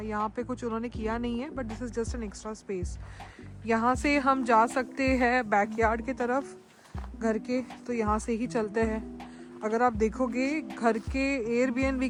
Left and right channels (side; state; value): both; identical; correlation 1.00